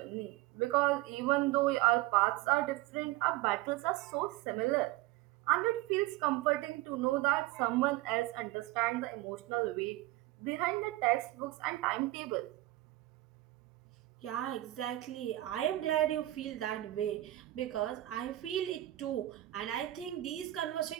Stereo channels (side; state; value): left; quieter; 16.9 dB